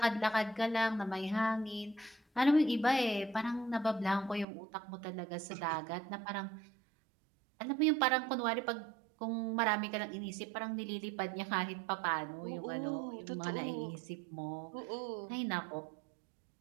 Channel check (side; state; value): left; drops out; at 4.5 s